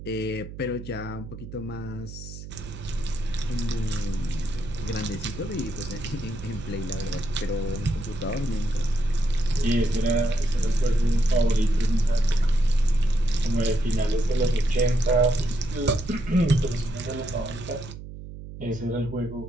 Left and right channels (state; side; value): noise; right; hum, 12 dB below the sound